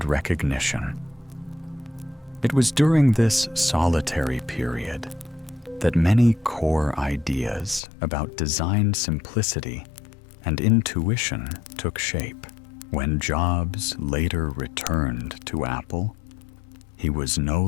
recognition. It was during this solitary period that many core ideas about design simplicity and intuition took shape. When Jobs later returned to Apple, he was no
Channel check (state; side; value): drops out; right; at 7.8 s